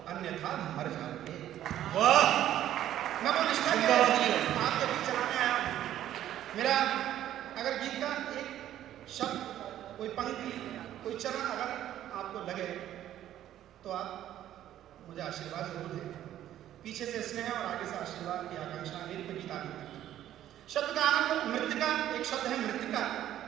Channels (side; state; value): left; quieter; 12.0 dB